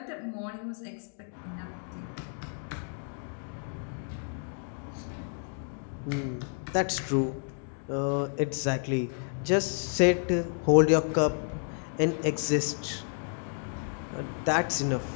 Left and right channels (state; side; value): silent; right; 57 dB below the other